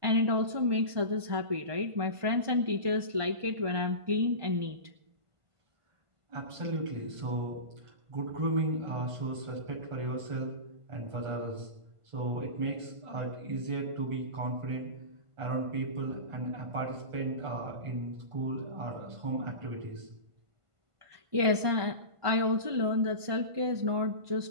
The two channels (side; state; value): left; late; 1.5 ms